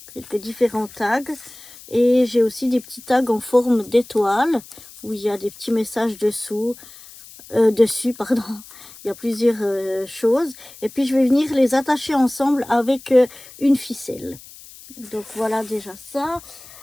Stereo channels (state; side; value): noise; left; hiss, 19 dB below the sound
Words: quelques différents tags. Et j'ai aussi des petits tags en forme d'étoile où il y a des petits messages dessus, pardon. Il y a plusieurs choses. Et puis je vais venir les attacher ensemble avec une ficelle. Donc voilà déjà ça.